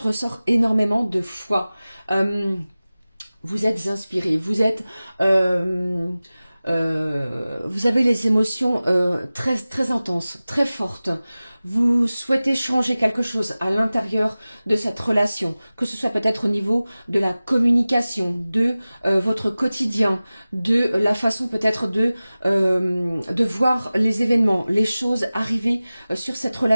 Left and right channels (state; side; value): inverted; both; correlation -0.97